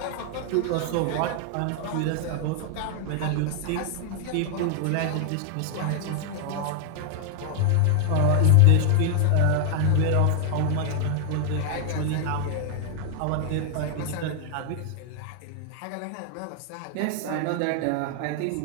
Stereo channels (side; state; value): both; different; correlation 0.00